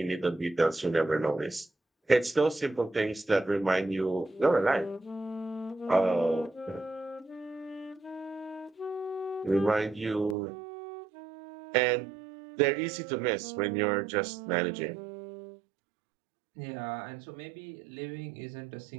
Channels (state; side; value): drops out; left; at 10.4 s